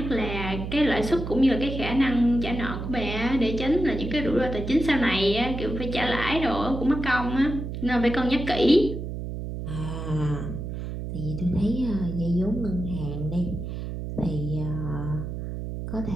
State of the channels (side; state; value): right; noise; hum, 6 dB below the sound